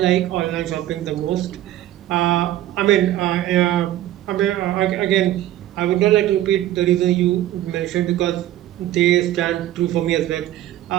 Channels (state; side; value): quieter; left; 13.5 dB